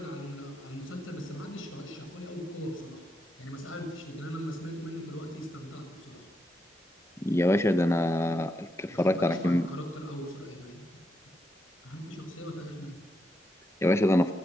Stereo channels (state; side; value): normal; both; correlation 0.83